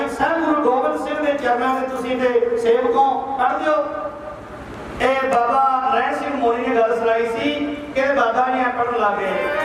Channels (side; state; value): both; identical; correlation 1.00